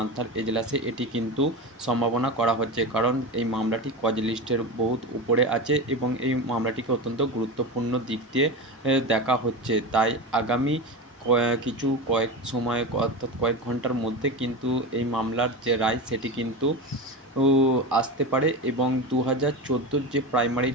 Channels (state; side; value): normal; both; correlation 0.24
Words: এজলাসে। এটি কিন্তু সম্ভাবনা করা হচ্ছে, কারণ এই মামলাটি কজ লিস্টের বহুত উপরে আছে এবং এই মামলাটিকে অত্যন্ত গুরুত্বপূর্ণ দিক দিয়ে দেখা হচ্ছে। তাই আগামী কয়েক সময় অর্থাৎ কয়েক ঘন্টার মধ্যে কিন্তু এই মামলার যে রায় সেটি কিন্তু আসতে পারে এবং 2014 যে প্রাইমারি